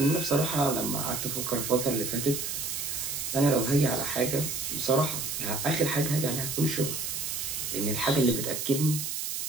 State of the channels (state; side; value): noise; right; hiss, 3 dB below the sound